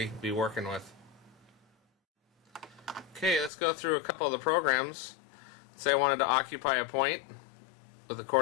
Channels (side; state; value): right; drops out; at 3.5 s